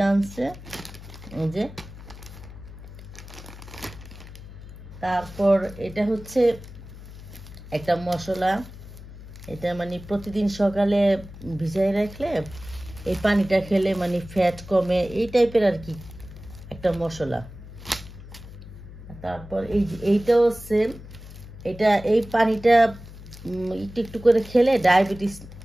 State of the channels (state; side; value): noise; left; hum, 15 dB below the sound